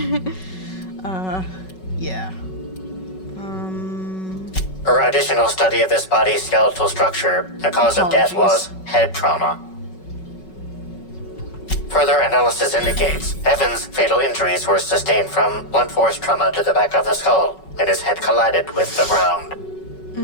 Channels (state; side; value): late; right; 5.4 ms